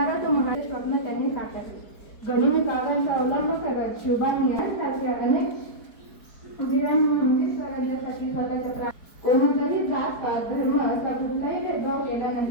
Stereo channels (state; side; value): late; right; 4.7 ms